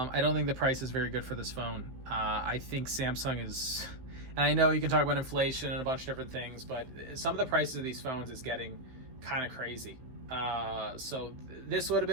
don't think the price is very good for this phone. I think Samsung is, and I know you can talk about inflation and a bunch of different things, but some of the prices of these phones is getting kind of crazy. So this would have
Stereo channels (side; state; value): left; late; 15 ms